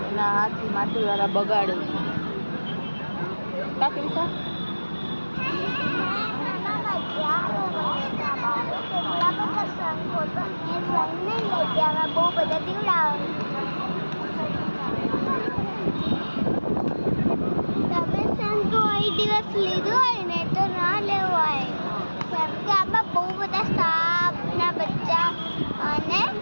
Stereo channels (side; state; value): both; inverted; correlation -1.00